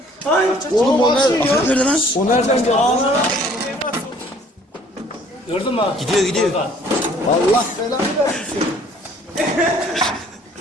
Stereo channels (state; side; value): normal; both; correlation 0.56